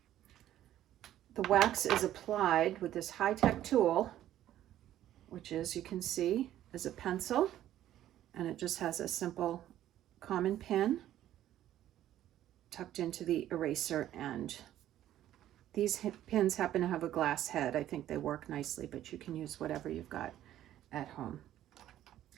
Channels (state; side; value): quieter; left; 12.5 dB